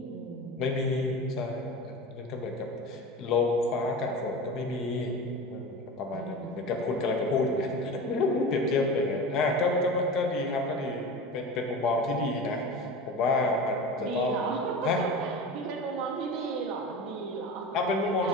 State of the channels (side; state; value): both; normal; correlation 0.30